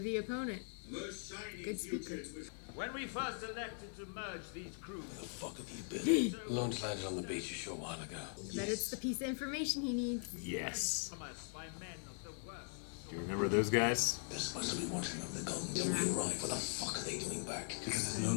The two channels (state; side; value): silent; right; 50 dB below the other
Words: opponent. The most shining Good speaker. future is with- When we first elected to merge these crews, Where the fuck have you been? Launch landed on the beach a short while ago. But it's the piece of information he needs. Yes. from us by men of the worst. Do you remember those guys? They're supposed to be watching over the gold until we arrive. What the fuck are they doing back? Because there's